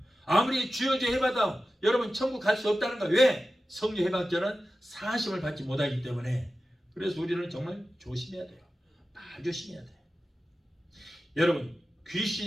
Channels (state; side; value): normal; both; correlation 0.94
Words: 아무리 주여 주여 해봐도 여러분 천국 갈 수 없다는 거예요. 왜? 성령 해방죄는 사하심을 받지 못하기 때문에. 그래서 우리는 정말 조심해야 돼요. 말 조심해야 돼요. 여러분,